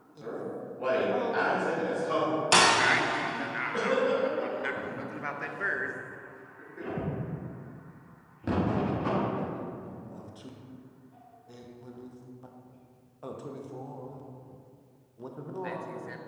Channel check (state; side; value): identical; both; correlation 1.00